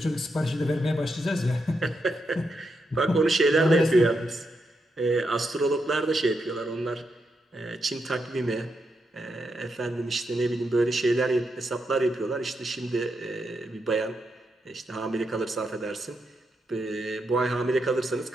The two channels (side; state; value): both; normal; correlation 0.83